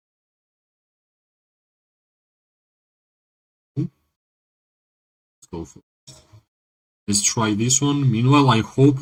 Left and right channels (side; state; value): both; identical; correlation 1.00